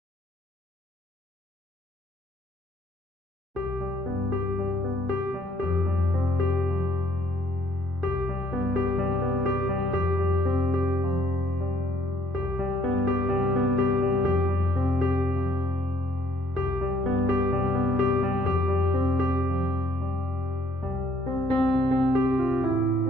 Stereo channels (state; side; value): normal; both; correlation 0.63